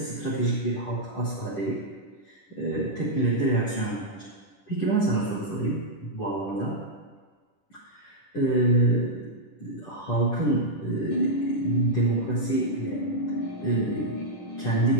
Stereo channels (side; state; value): right; late; 10 ms